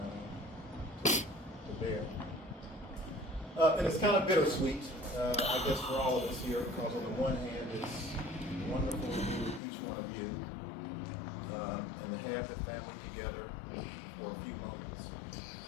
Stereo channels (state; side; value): drops out; right; at 9.6 s